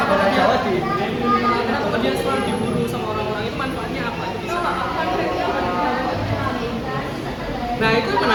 kenapa dia selalu diburu sama orang-orang itu manfaatnya apa? Nah itu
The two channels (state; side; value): identical; both; correlation 1.00